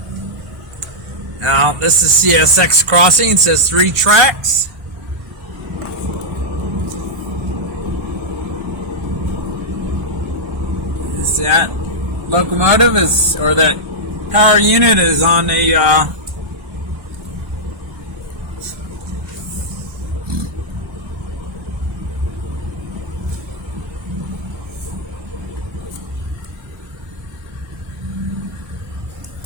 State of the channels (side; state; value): left; late; 1.3 ms